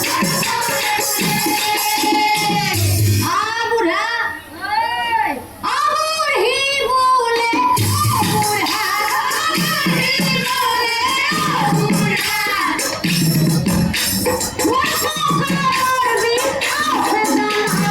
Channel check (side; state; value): both; identical; correlation 1.00